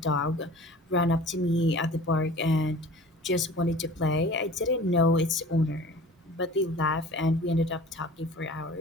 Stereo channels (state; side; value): normal; both; correlation 0.43